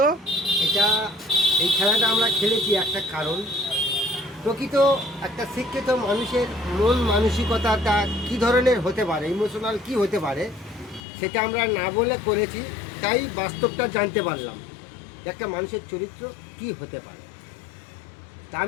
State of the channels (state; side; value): drops out; right; at 11.0 s